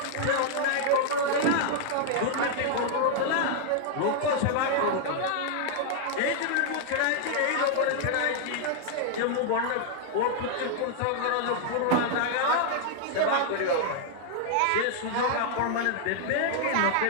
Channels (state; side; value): different; both; correlation 0.00